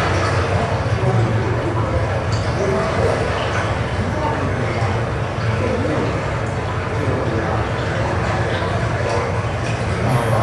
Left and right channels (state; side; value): identical; both; correlation 1.00